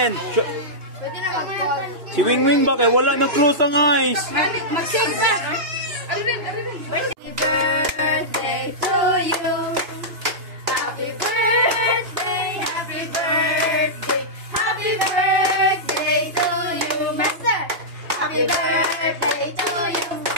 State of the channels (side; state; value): left; late; 2.9 ms